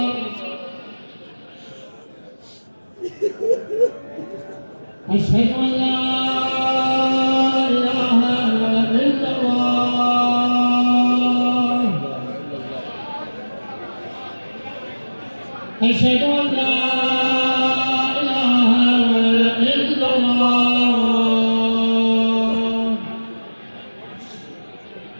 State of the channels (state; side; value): inverted; both; correlation -1.00